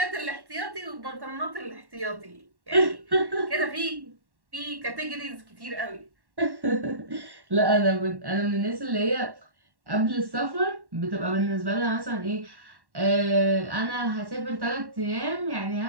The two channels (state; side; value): late; left; 1.1 ms